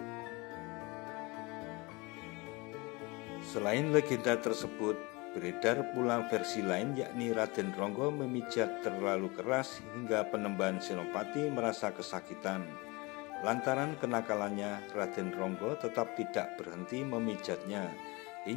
Selain legenda tersebut, beredar pula versi lain yakni Raden Ronggo memijat terlalu keras hingga Panembahan Senopati merasa kesakitan. Lantaran kenakalannya, Raden Ronggo tetap tidak berhenti memijatnya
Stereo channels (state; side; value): quieter; right; 25.5 dB